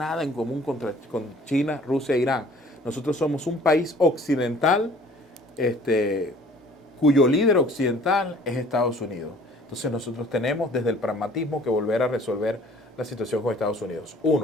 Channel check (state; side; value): normal; both; correlation 0.53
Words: en común con China, Rusia e Irán. Nosotros somos un país occidental cuyo líder occidental es Estados Unidos. Entonces nosotros tenemos desde el pragmatismo que volver a resolver la situación con Estados Unidos.